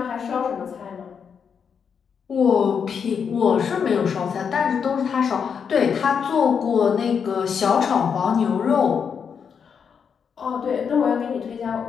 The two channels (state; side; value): quieter; right; 6.8 dB